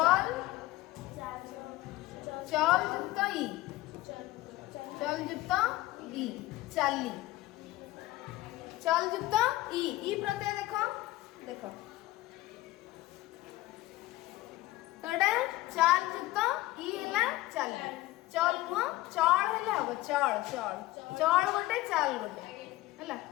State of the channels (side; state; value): right; quieter; 17.6 dB